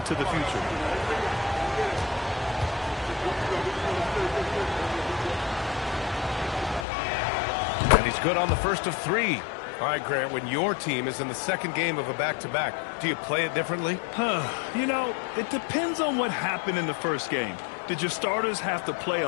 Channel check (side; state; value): right; drops out; at 6.9 s